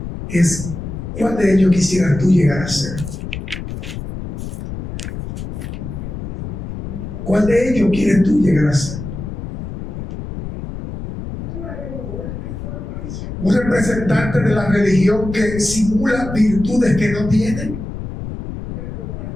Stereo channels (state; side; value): noise; left; rumble, 8 dB below the sound